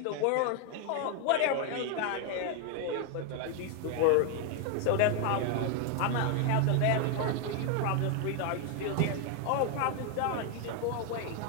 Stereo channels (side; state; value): both; different; correlation 0.01